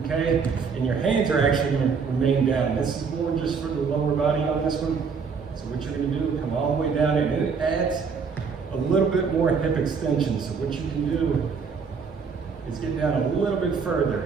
okay? And your hands are actually going to remain down. This is more just for the lower body on this one. So what you're going to do, come all the way down, and it adds a little bit more hip extension. So what you can do is get down a little bit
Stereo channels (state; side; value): quieter; left; 5.6 dB